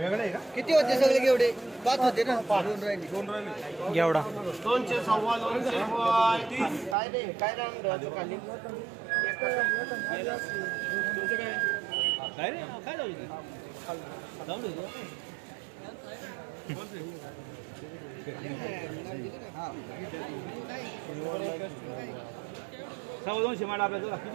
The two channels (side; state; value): left; drops out; at 7.0 s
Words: किती होते सगळे घेवडे 5 होते ना 2 राहिले घेवडा 200 सव्वा 200 रुपये काय रे काय राहणार खाली तुमचं काय रे काय जाऊ सव्वा 200 माडा आपल्याला